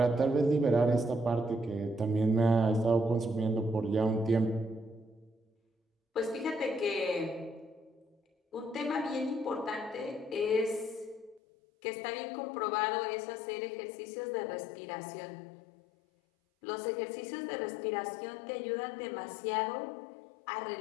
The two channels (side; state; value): right; drops out; at 11.4 s